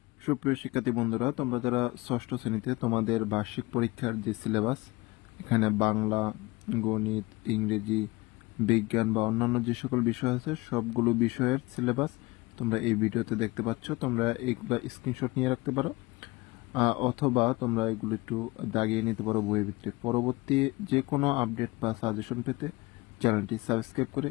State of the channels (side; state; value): right; quieter; 22.5 dB